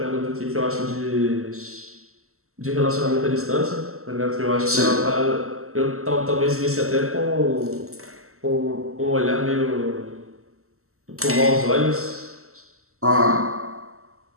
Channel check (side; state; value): left; late; 0.63 ms